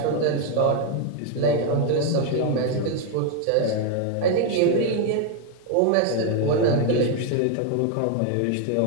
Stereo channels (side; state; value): both; different; correlation 0.01